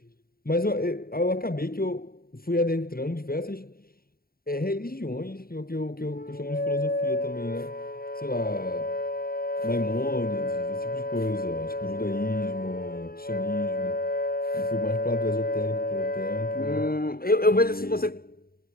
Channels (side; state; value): right; late; 0.43 ms